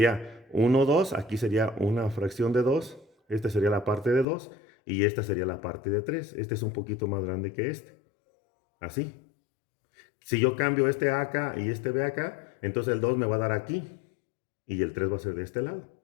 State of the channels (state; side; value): drops out; right; at 4.2 s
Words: 1, 2, aquí sería una fracción de 2, esta sería la parte de 2 y esta sería la parte de 3. Este es un poquito más grande que este. Así. Si yo cambio este A acá y este B acá, entonces el 2 me va a dar aquí y el 3 va a ser de este lado.